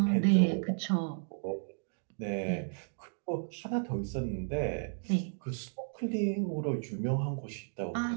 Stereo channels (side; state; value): left; silent; digital silence